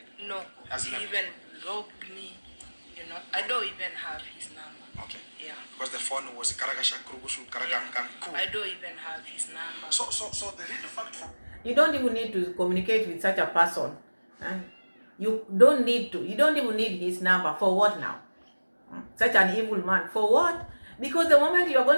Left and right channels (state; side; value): inverted; both; correlation -1.00